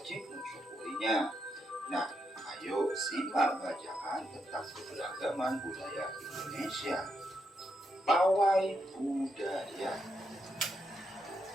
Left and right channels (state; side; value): normal; both; correlation 0.81